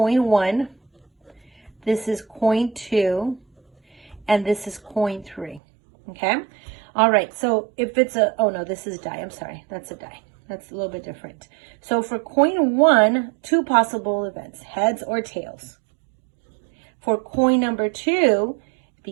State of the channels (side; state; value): left; drops out; at 5.6 s